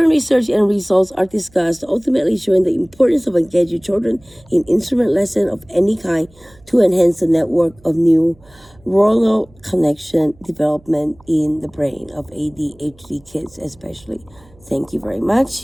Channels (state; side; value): noise; right; hum, 28 dB below the sound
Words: research and results are discussed, ultimately showing the importance of engaging children in instrument lesson of any kind to enhance the network of neuronal connection development in the brain of ADHD kids especially. Thank you very